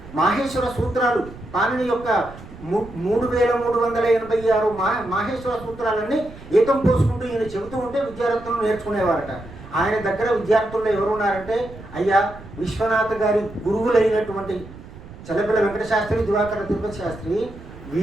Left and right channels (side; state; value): right; noise; rumble, 17 dB below the sound